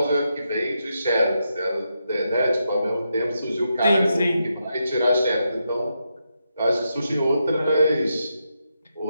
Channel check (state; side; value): inverted; both; correlation -0.83